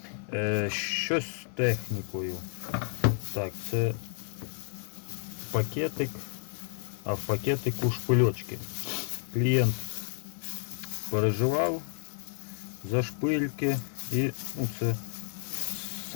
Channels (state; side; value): silent; right; digital silence